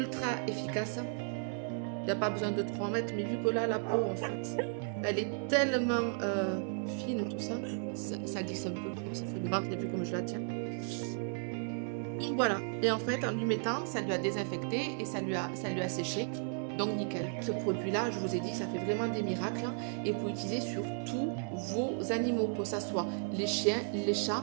efficace. Il n'y a pas besoin de 3 mètres, mais vu que là, la peau, en fait, elle est tellement fine, tout ça, ça glisse un peu. Ça fait le ventre, vu comme je la tiens. Donc voilà. Et en fait, en lui mettant, ça lui a désinfecté et ça lui a séché. Donc nickel. Ce produit-là, je vous ai dit, ça fait vraiment des miracles. Et vous pouvez l'utiliser sur tous vos animaux, que ce soit les chiens, les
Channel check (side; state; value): left; silent; 55 dB below the other